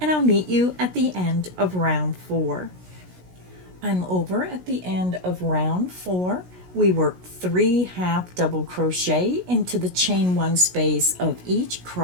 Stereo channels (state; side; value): late; left; 16 ms